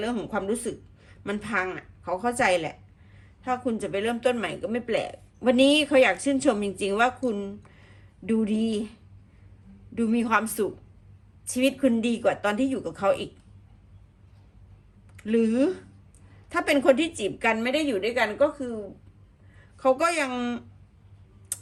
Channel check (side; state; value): both; identical; correlation 1.00